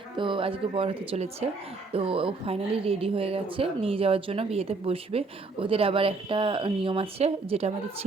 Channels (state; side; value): quieter; left; 3.8 dB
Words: তো আজকে বর হতে চলেছে। তো ও ফাইনালি রেডি হয়ে গেছে নিয়ে যাওয়ার জন্য, বিয়েতে বসবে। ওদের আবার একটা নিয়ম আছে যেটা আমাদের